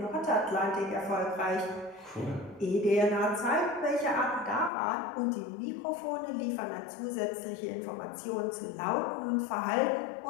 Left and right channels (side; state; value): right; drops out; at 4.7 s